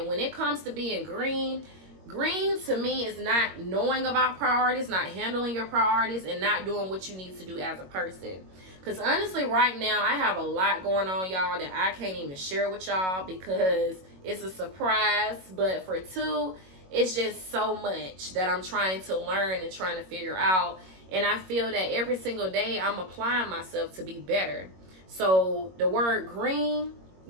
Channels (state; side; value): late; left; 21 ms